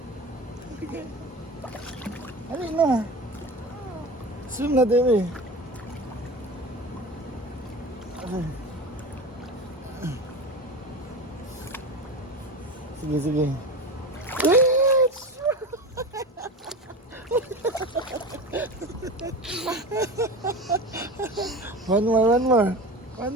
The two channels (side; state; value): both; normal; correlation 0.29